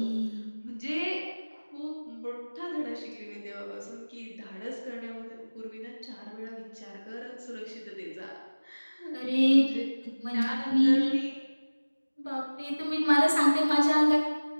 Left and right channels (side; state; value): both; inverted; correlation -1.00